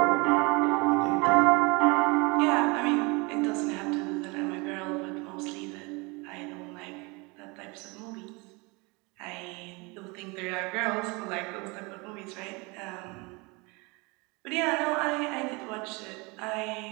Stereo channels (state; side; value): quieter; left; 27.3 dB